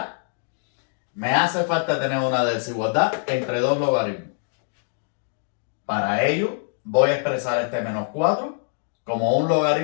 Me hace falta tener una desigualdad entre dos logaritmos. Para ello, voy a expresar este menos 4 como un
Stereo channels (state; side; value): silent; right; digital silence